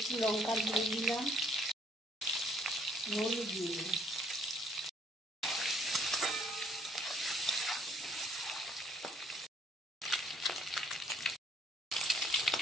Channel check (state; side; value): normal; both; correlation 0.64